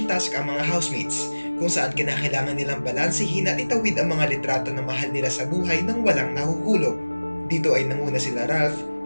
task ang mga housemates, kung saan kinakailangan nilang balansehin at itawid ang mga litrato ng mahal nila sa buhay nang walang nahuhulog. Dito ay nanguna sila Ralph,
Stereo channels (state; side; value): inverted; both; correlation -1.00